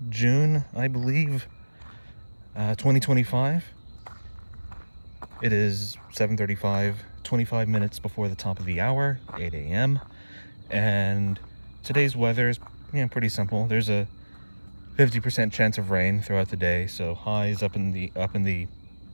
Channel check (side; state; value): both; inverted; correlation -1.00